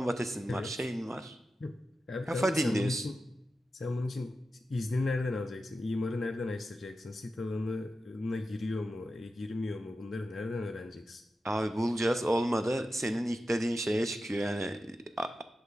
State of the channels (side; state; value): both; normal; correlation 0.91